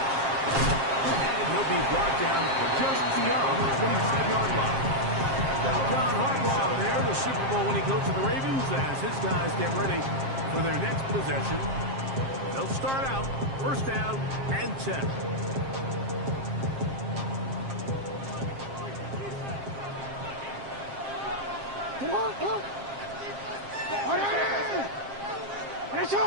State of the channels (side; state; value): left; late; 7.5 ms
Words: And he'll be brought down just beyond the 25-yard line. John Harbaugh there, the Super Bowl winning coach of the Ravens, as his guys get ready for their next possession. They'll start out 1st down and 10. Come on, come on.